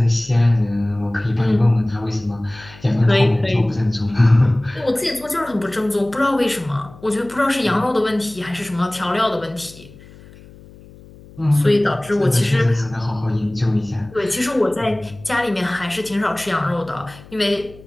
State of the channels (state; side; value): noise; left; hum, 21 dB below the sound